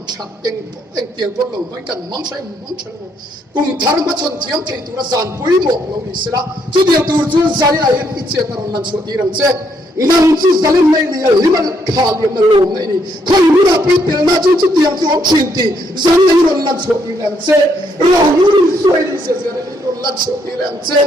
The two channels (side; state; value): both; normal; correlation 0.73